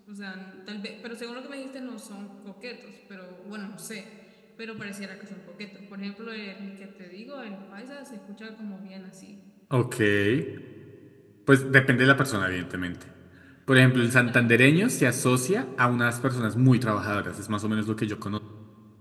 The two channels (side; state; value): both; identical; correlation 1.00